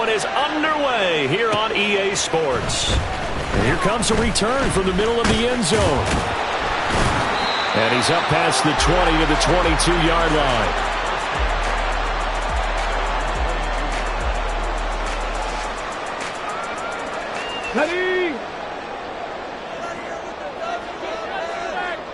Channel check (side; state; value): both; identical; correlation 1.00